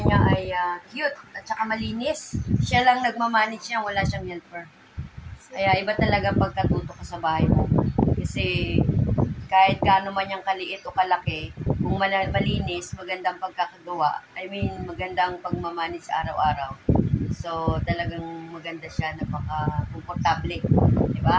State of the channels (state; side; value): identical; both; correlation 1.00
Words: niya ay cute at saka malinis. Siya lang nagmamanage niya. Wala siyang helper. Kaya iba talaga pagkatuto ka sa bahay mo. Kasi kahit gaano man yung kaliit o kalaki, kung malinis, magandang pagkakagawa, I mean, magandang pagmamanage araw-araw. So, talagang maganda siya, napaka-komportable.